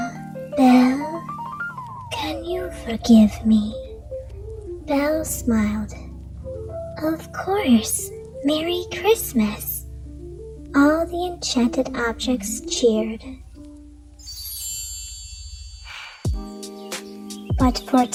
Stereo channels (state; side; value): identical; both; correlation 1.00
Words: "Belle, can you forgive me?" Belle smiled. Of course, Merry Christmas! All the enchanted objects cheered. But